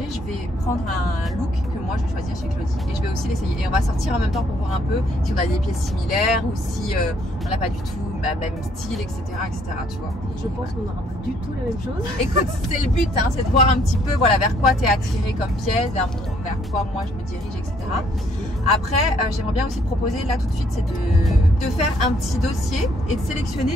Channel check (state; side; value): normal; both; correlation 0.66